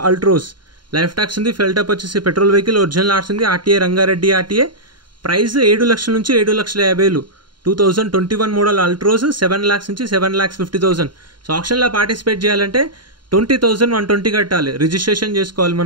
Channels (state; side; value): late; left; 0.71 ms